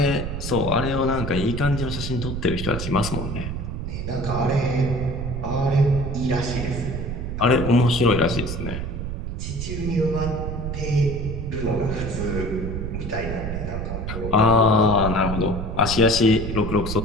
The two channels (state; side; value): noise; right; rumble, 5 dB below the sound